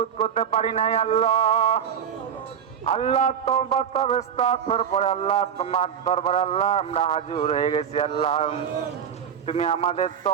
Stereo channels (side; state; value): left; quieter; 8.2 dB